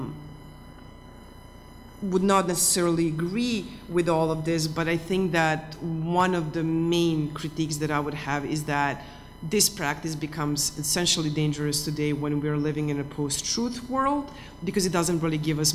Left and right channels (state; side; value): identical; both; correlation 1.00